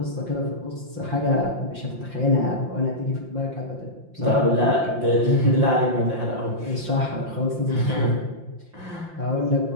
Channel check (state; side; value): late; left; 5.7 ms